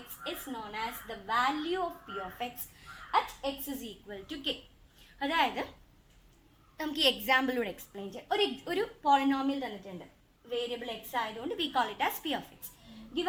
x is known as the value of p of x at x is equal to k. അതായത് നമുക്ക് ഈ എക്സാമ്പിളിലൂടെ എക്സ്പ്ലെയിൻ ചെയ്യാം. ഒരു പോളിനോമിയൽ തന്നിട്ടുണ്ട്, വേരിയബിൾ എക്സ് ആയതുകൊണ്ട് V call it as p of x.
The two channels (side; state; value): both; identical; correlation 1.00